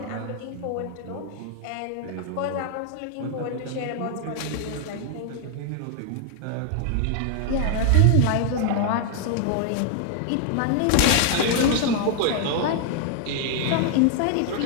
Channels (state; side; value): different; both; correlation 0.00